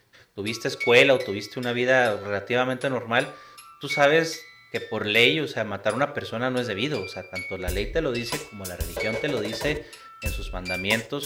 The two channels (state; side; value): identical; both; correlation 1.00